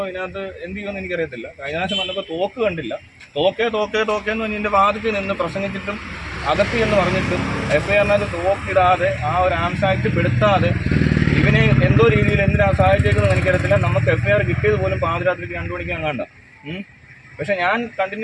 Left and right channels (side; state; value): both; identical; correlation 1.00